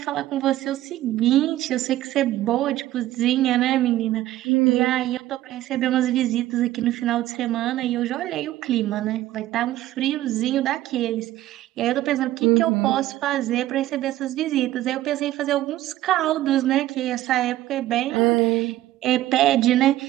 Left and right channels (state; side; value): quieter; left; 14.7 dB